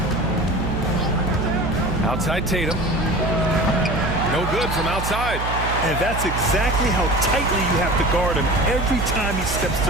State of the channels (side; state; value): right; noise; hum, 5 dB below the sound